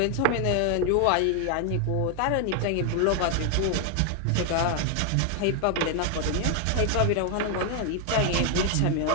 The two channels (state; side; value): different; both; correlation 0.00